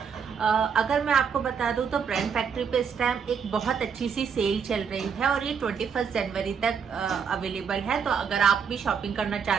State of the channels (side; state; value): left; quieter; 6.7 dB